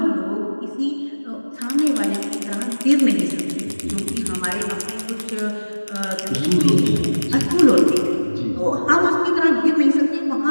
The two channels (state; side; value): inverted; both; correlation -1.00